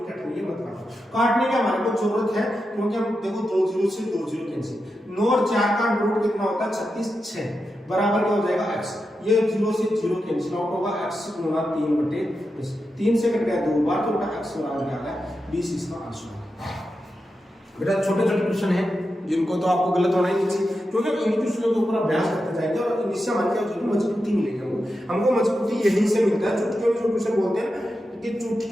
कट रही है मत काटो। काटने की हमारे को जरूरत है, क्योंकि हम देखो 2 0 से 2 0 कैंसिल, 9 और 4 का रूट कितना होता है? 36, 6 बराबर क्या हो जाएगा? x। ये 0 से 0 कैंसिल आउट होगा, x गुणा 3/20, 3 से कट गया 2 बार, तो बेटा x बराबर क्या आ गया? 20 इसका आंसर है। बेटा छोटे छोटे क्वेश्चन हैं जिनको तो आपको गलत होना ही नहीं चाहिए, क्योंकि इन क्वेश्चनों के ऊपर अभ्यास करते जाएंगे और इनसे हमारे क्या होगी? मजबूती मिलेगी। हमको मजबूती यहीं से मिलता है। चुटकियों में जो क्वेश्चन बोलते हैं कि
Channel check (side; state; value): both; normal; correlation 0.89